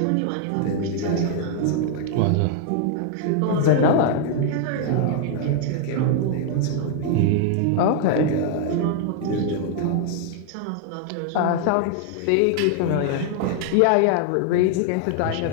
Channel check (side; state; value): both; different; correlation 0.00